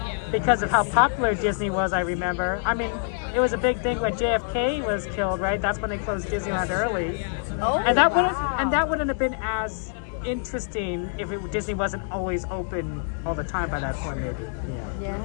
because of how popular Disney was, I remember. I mean, it was a big thing when JFK was killed, right? That's when they closed Disneyland early. Oh, and that wouldn't have been as interesting if Disney wasn't always open all the time by that point, maybe. Yeah,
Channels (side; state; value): right; silent; digital silence